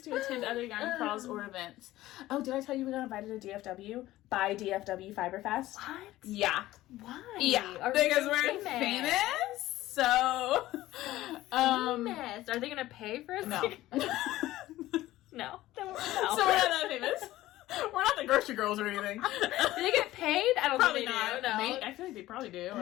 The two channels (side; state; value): right; quieter; 16.0 dB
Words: to attend other yarn crawls or events? Oh, did I tell you we got invited to DFW by DFW Fiberfest? What? Yeah. Why? Yeah, because we're famous. So, famous. Are they gonna pay for us? No. No. So we're not that famous. We're not the grocery girls or anything. Do they get paid? I don't Probably think they not. do. No. I feel like they probably do.